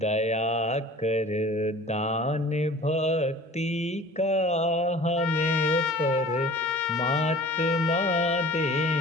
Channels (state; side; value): normal; both; correlation 0.45